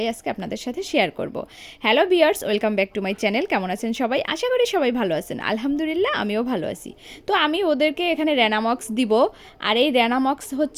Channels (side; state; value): both; identical; correlation 1.00